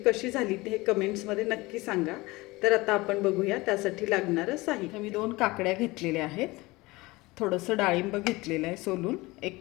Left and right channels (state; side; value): quieter; right; 21.7 dB